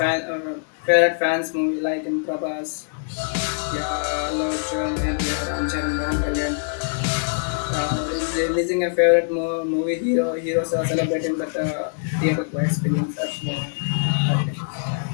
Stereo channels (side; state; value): right; silent; digital silence